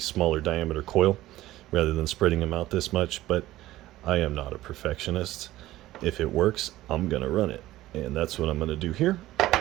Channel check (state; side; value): quieter; left; 15.9 dB